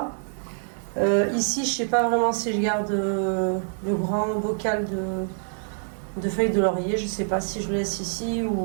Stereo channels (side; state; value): left; silent; digital silence